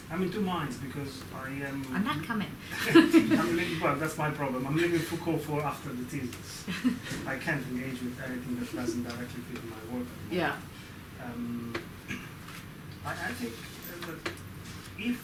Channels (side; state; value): both; identical; correlation 1.00